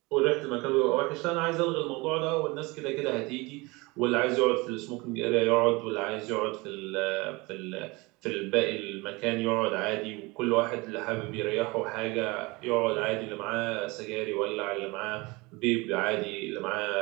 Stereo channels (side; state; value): left; quieter; 24.6 dB